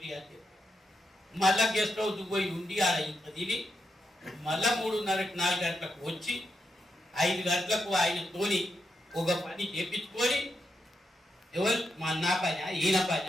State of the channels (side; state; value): both; normal; correlation 0.84